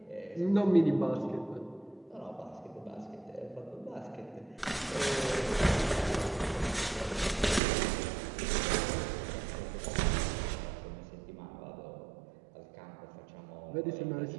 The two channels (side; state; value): left; drops out; at 7.6 s